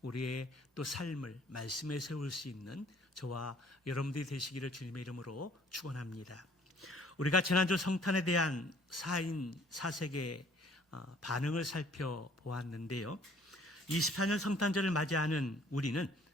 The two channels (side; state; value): both; normal; correlation 0.58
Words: 우리의 또 삶을 말씀에 세울 수 있는 저와 여러분들이 되시기를 주님의 이름으로 축원합니다. 우리가 지난주 성탄에 대한 4인 4색의 반응을 살펴보았는데요. 24년 성탄절을 맞이하는 우리는